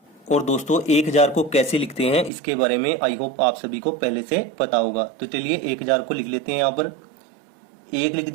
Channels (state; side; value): drops out; left; at 2.3 s